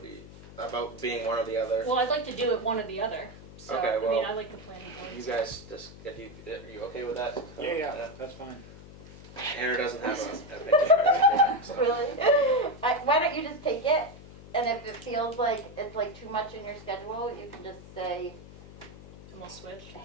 about being one or the other? Well, I'd like to do it one or the other. So, Okay, I mean, well, I like the planning board. You guys, just, are you okay with that? Yeah, that's fine. Aaron doesn't have a opinion. So. Really? Why don't you just take it, and if it feels like it's like too much in your schedule, you can just say, And we'll switch.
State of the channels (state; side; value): noise; left; hum, 17 dB below the sound